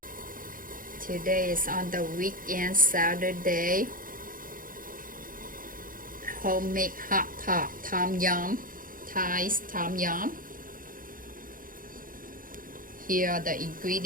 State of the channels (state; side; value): late; left; 0.40 ms